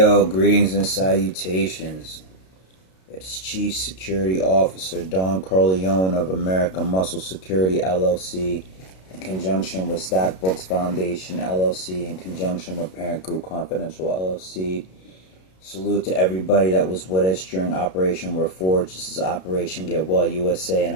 greetings and salutations. It's Chief Security Officer Don Corleone of American Muscle Security LLC in conjunction with Stack Books Foundation LLC in conjunction with Parent Group Confidential LLC. Salute to everybody that was with us during Operation Reforge. This is Operation Get Well USA, and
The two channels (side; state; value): right; late; 32 ms